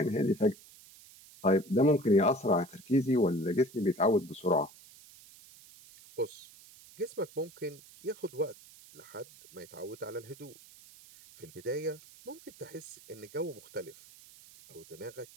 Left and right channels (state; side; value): noise; right; hiss, 22 dB below the sound